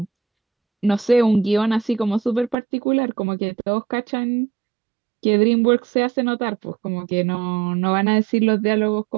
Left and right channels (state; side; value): drops out; left; at 2.6 s